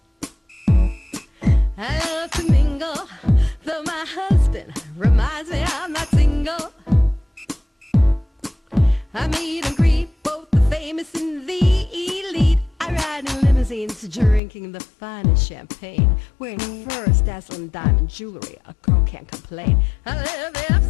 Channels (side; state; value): right; drops out; at 14.4 s